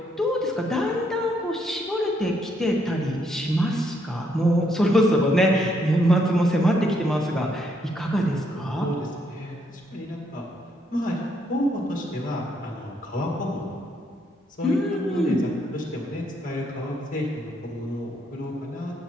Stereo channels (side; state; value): both; normal; correlation 0.74